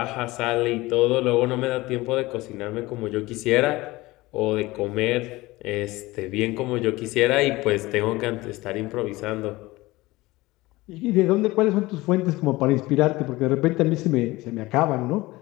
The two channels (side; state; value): right; quieter; 20.0 dB